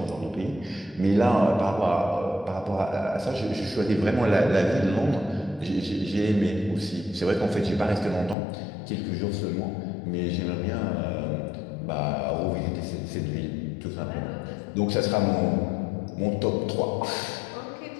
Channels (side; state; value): right; drops out; at 8.3 s